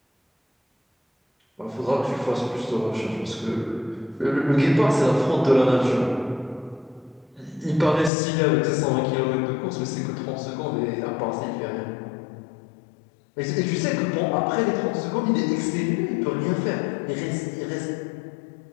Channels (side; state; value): right; drops out; at 8.1 s